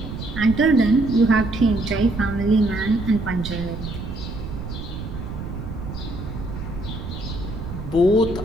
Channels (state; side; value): noise; right; rumble, 8 dB below the sound